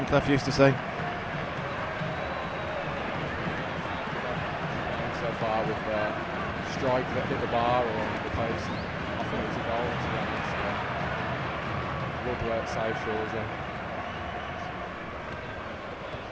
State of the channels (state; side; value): identical; both; correlation 1.00